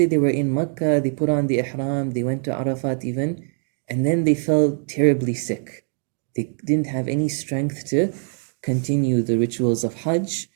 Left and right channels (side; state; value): left; silent; 56 dB below the other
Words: they were in Makkah, they put on the ihram, they went to Arafat even, and then they fell terribly sick. They didn't have any strength to continue the rituals of Hajj.